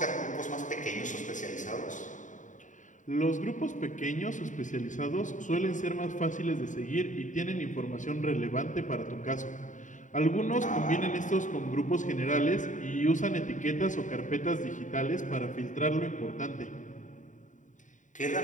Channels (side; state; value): right; late; 0.36 ms